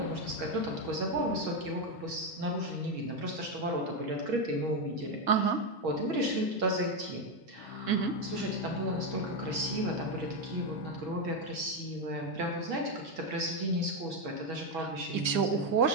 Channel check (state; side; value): late; right; 1.7 ms